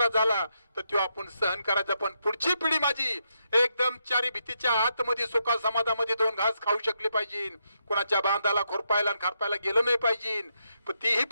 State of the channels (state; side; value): inverted; both; correlation -0.81